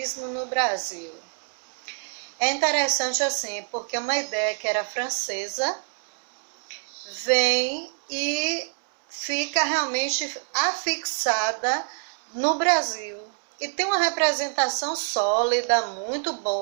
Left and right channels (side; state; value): left; silent; 61 dB below the other